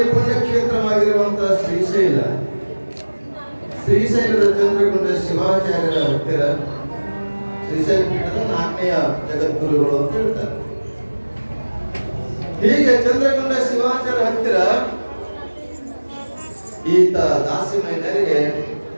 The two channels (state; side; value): inverted; both; correlation -1.00